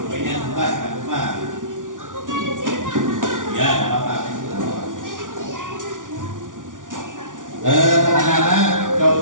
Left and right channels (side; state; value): left; late; 0.88 ms